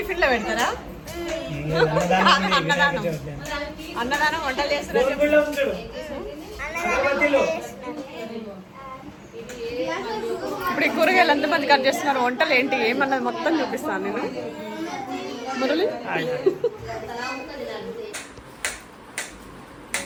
లో పెడతారా? అన్నదానం అన్నదానం వంటలు చేస్తారు. ఇప్పుడు ఈ కూరగాయలు ఎంతమంది కట్ చేస్తున్నారు, వంటలు ఏంటి ఏమన్నది మొత్తం చూపిస్తాను నేను. మురళి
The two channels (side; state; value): both; identical; correlation 1.00